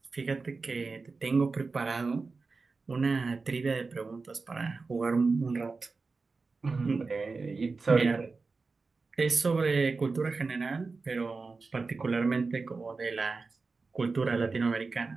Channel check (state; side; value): quieter; left; 4.2 dB